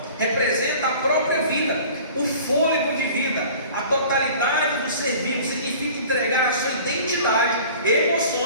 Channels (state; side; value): inverted; both; correlation -0.45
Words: representa a própria vida, o fôlego de vida, a totalidade do ser vivo. Significa entregar a sua identidade,